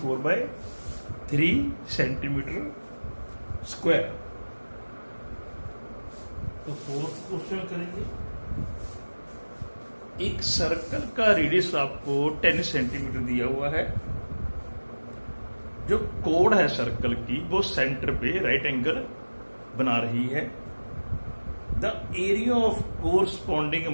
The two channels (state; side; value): inverted; both; correlation -1.00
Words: centimetre square. तो फोर्थ क्वेश्चन करेंगे। एक सर्कल का रेडियस आपको 10 सेंटीमीटर दिया हुआ है। जो कोड है सर्कल की वो सेंटर पे राइट एंगल बना रही है। The area of corresponding